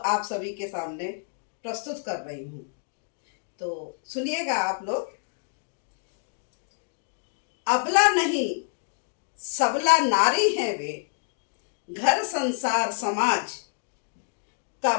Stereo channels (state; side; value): silent; right; digital silence